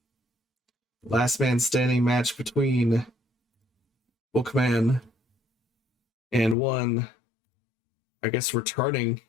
Last man standing match between Bookman and one, I guess, returning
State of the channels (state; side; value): drops out; right; at 6.6 s